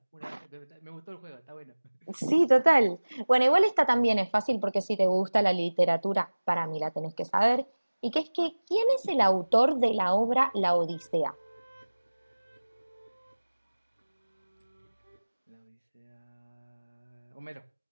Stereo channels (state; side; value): inverted; both; correlation -1.00